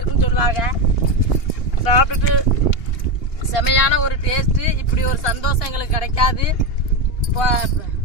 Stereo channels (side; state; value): right; late; 2.8 ms